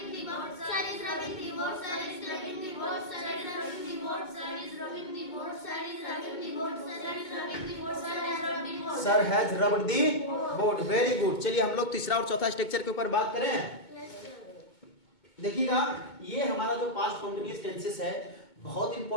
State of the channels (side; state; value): right; late; 2.2 ms